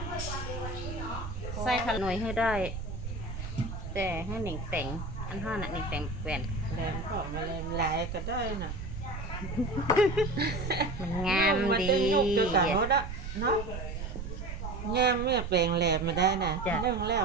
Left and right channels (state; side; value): noise; right; rumble, 7 dB below the sound